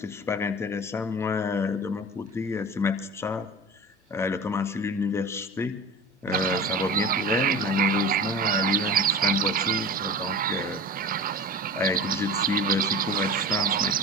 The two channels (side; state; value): both; normal; correlation 0.35